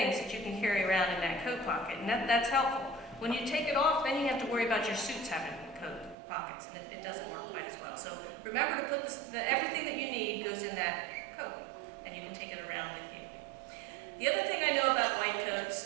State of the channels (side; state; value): left; drops out; at 6.2 s